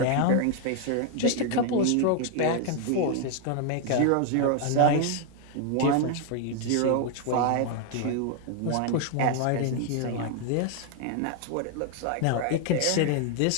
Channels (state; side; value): different; both; correlation 0.00